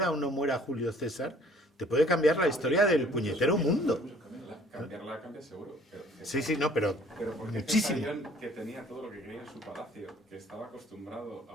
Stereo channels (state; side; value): normal; both; correlation 0.56